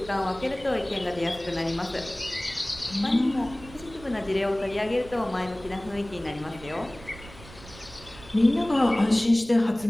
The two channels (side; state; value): right; noise; rumble, 18 dB below the sound